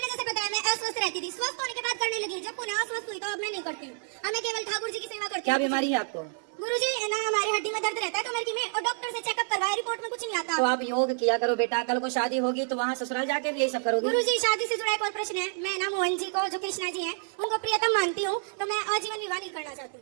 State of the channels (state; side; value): silent; left; 59 dB below the other